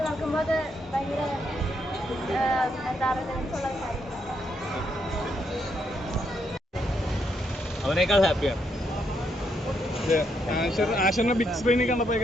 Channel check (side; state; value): both; normal; correlation 0.77